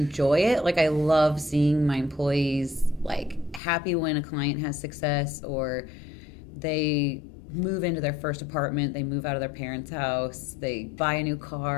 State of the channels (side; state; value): right; drops out; at 3.6 s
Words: it. Like, I love seeing my employees, like, happy when a client has success, or they move into their first apartment, they move out of their parents' house, they buy a new